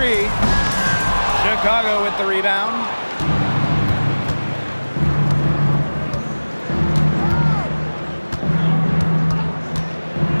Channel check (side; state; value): both; inverted; correlation -1.00